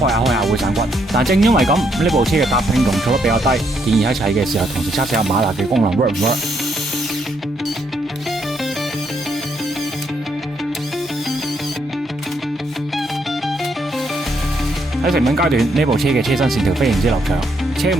下會散骨。但正因為咁，呢部車嘅搭拼容錯率比較低，建議喺砌嘅時候同時測試下馬達嘅功能 work 唔 work。喺成品階段，呢部車嘅車身線條非常之流暢，車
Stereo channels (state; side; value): normal; both; correlation 0.75